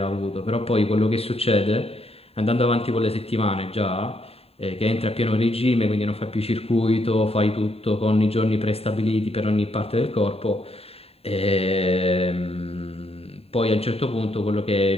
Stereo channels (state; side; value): late; right; 0.29 ms